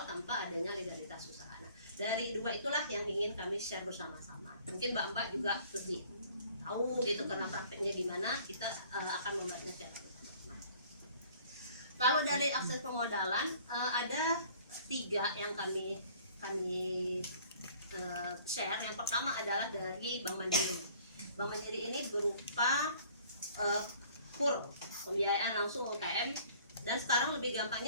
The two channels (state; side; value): inverted; both; correlation -0.54